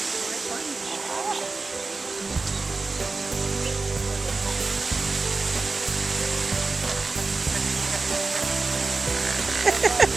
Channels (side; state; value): left; quieter; 3.9 dB